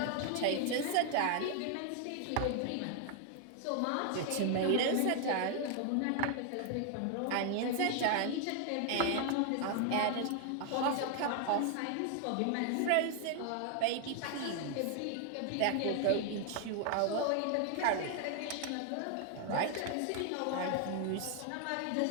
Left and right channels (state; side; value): different; both; correlation 0.00